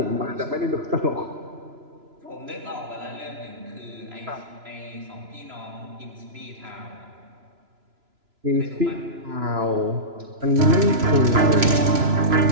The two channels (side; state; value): left; late; 3.0 ms